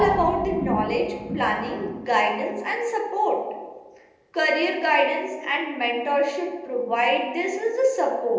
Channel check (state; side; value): identical; both; correlation 1.00